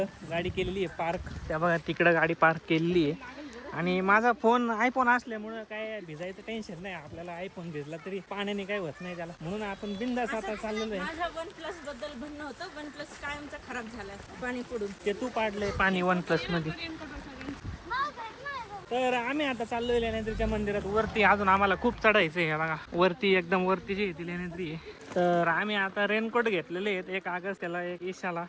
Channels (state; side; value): identical; both; correlation 1.00